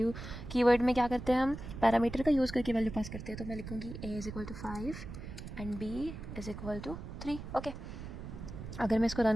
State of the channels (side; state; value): right; noise; rumble, 10 dB below the sound